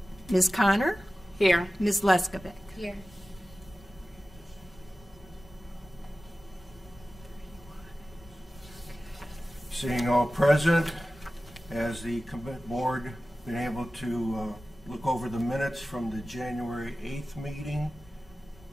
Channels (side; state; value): both; normal; correlation 0.96